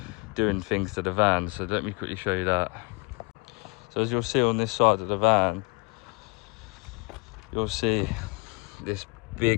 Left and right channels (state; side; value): quieter; right; 30.8 dB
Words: doing things to the van. So let me quickly show you that. So as you'll see on this side of the van, you'll see this